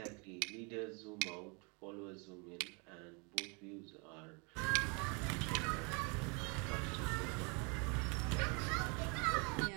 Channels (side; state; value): left; quieter; 33.0 dB